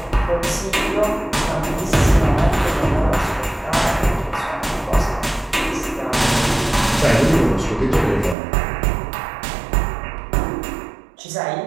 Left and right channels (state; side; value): drops out; left; at 8.3 s